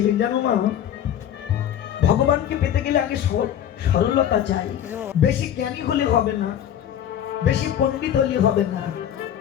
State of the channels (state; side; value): quieter; right; 10.2 dB